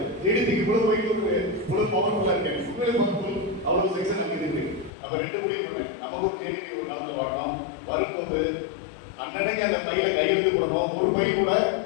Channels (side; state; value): right; drops out; at 4.9 s